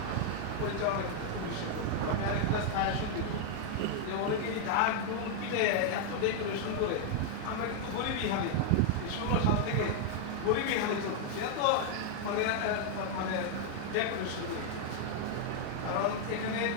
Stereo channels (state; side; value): different; both; correlation 0.00